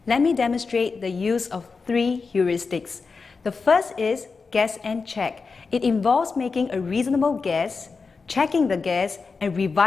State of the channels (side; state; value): right; quieter; 4.7 dB